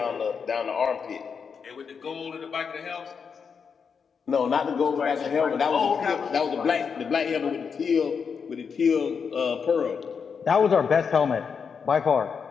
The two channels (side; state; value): right; quieter; 6.2 dB